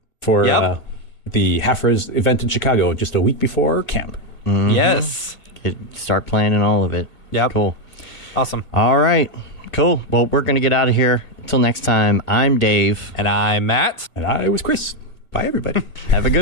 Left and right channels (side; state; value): right; late; 1.8 ms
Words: for Yep. the HalfRez event in Chicago just a week before camp. Yes. Start planning all of it. Yep. Cool. Awesome. All right. Cool. Well, we're going to get out of here. Until next time, I'm Dave. And I'm Matt. And I was Chris. Bye, everybody. Have a